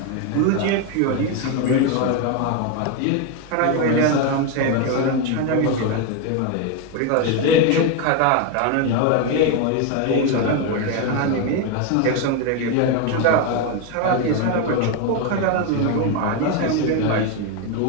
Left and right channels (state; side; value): different; both; correlation 0.02